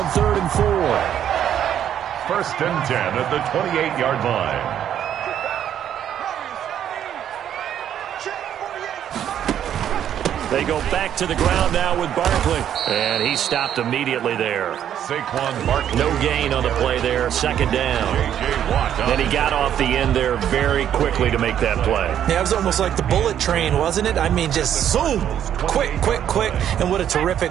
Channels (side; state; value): left; quieter; 10.0 dB